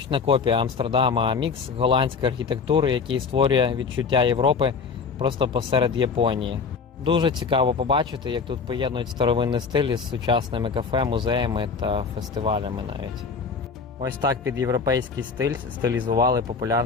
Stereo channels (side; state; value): right; quieter; 5.3 dB